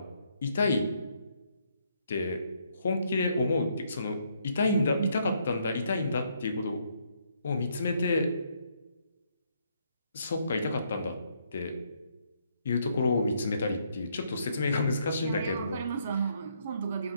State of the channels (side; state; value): both; inverted; correlation -0.72